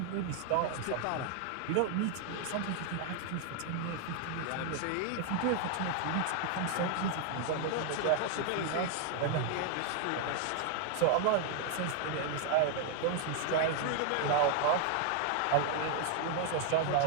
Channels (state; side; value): different; both; correlation 0.00